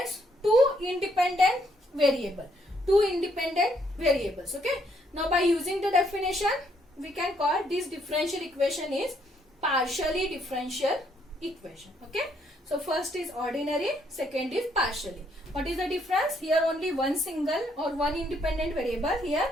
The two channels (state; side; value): normal; both; correlation 0.71